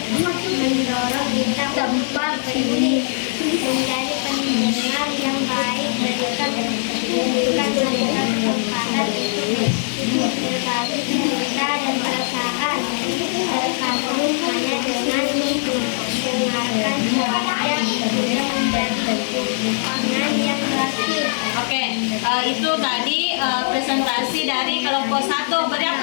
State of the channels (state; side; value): silent; right; digital silence